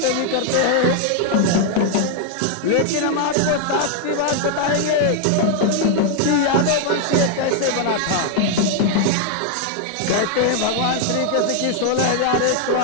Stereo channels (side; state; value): both; different; correlation 0.00